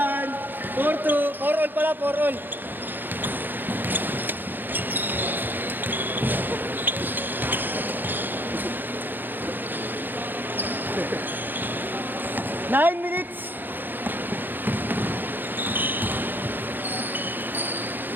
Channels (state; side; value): late; left; 0.091 ms